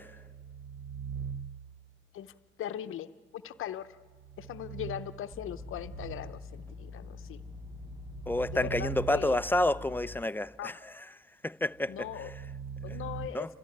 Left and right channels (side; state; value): both; normal; correlation 0.66